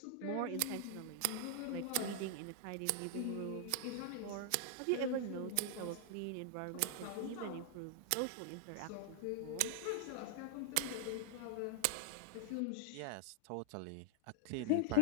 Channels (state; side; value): different; both; correlation 0.00